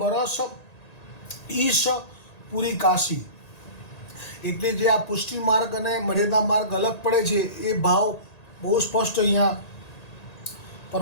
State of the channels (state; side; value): late; right; 1.9 ms